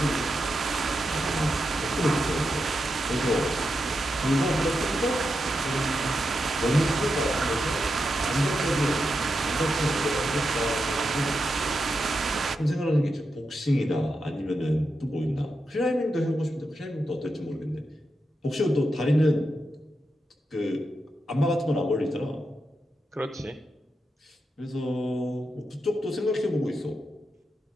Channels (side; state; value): both; normal; correlation 0.87